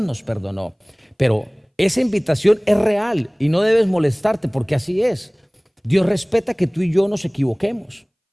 perdonó. Pero esa invitación es real y no debes molestarte, porque así es. Dios respeta que tú y yo nos equivoquemos.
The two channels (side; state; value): both; identical; correlation 1.00